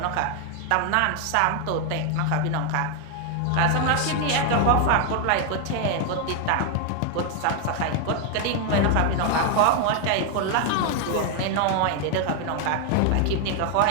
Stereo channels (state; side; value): different; both; correlation 0.00